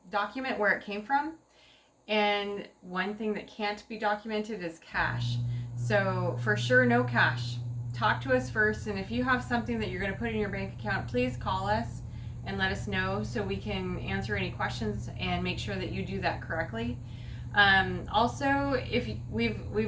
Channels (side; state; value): both; identical; correlation 1.00